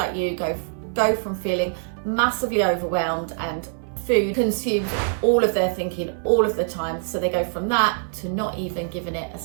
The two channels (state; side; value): silent; left; 63 dB below the other